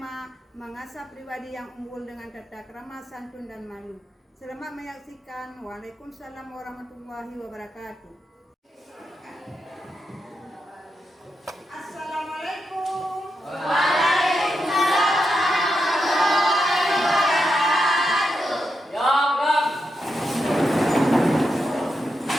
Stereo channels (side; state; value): both; normal; correlation 0.86